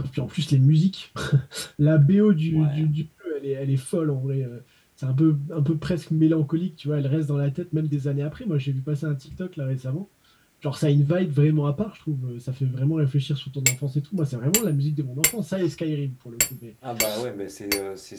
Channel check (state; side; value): identical; both; correlation 1.00